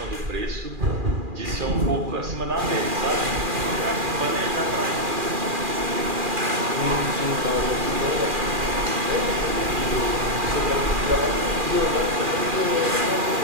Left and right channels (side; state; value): left; late; 2.4 ms